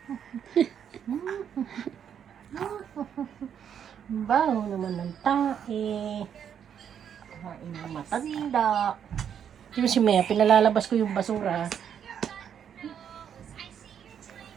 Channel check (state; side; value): quieter; left; 8.5 dB